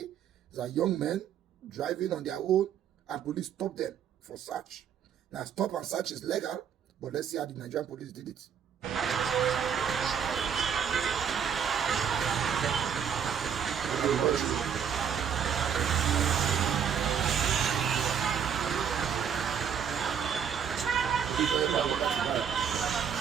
There's a young man driving on their own and police stopped them for search. Now, stop and search is legal, but let's see how the Nigerian police did it.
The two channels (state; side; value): quieter; left; 7.9 dB